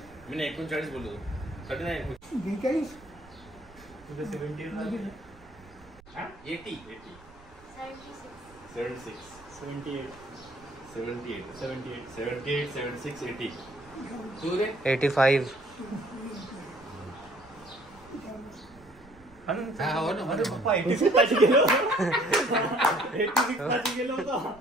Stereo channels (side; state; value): right; noise; rumble, 24 dB below the sound